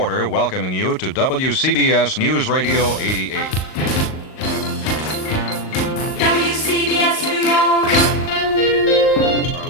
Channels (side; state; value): right; late; 38 ms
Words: welcoming you to WCBS News Radio 88. WCBS New York. Our